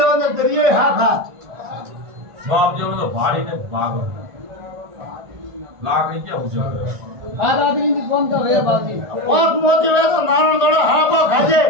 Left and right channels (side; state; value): left; late; 1.4 ms